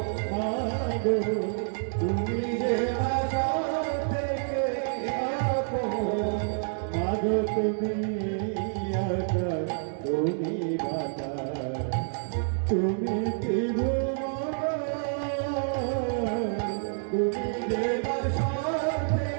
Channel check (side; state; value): left; silent; digital silence